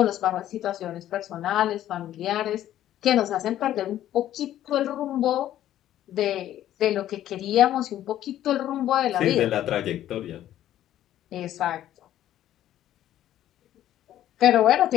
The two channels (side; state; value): right; quieter; 12.4 dB